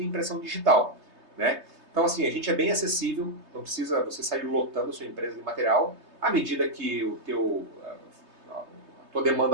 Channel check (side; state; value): left; late; 3.2 ms